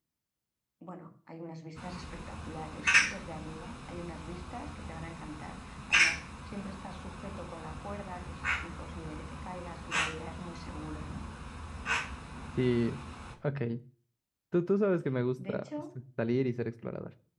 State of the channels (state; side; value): identical; both; correlation 1.00